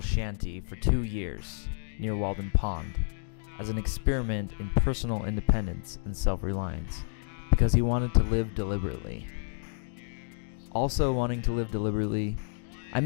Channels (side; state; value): right; silent; digital silence